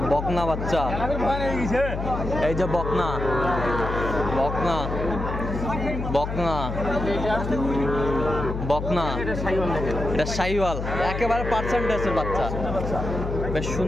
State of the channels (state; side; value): noise; left; hum, 4 dB below the sound